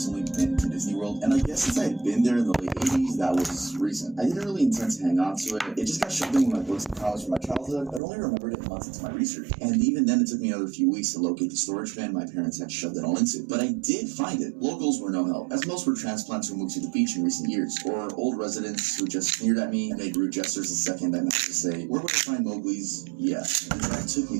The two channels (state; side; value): drops out; left; at 8.0 s